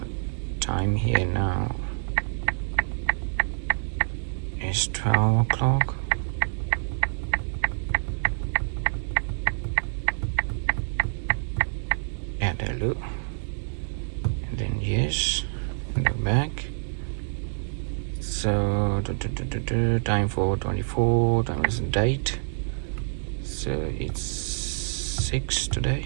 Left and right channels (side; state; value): left; silent; digital silence